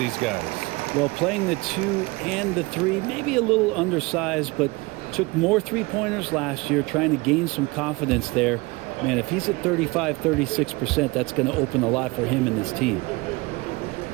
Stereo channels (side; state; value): left; quieter; 24.2 dB